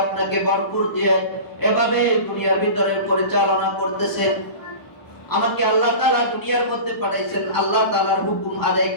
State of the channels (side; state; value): right; late; 1.0 ms